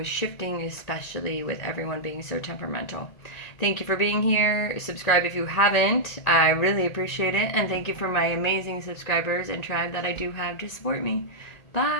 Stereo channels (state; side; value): late; right; 1.9 ms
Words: shifting, especially with everyone being so temperamental. Thank you for being here. Subscribe if you haven't. I really appreciate it. And thank you for my amazing subscribers and tribe that I do have to support me.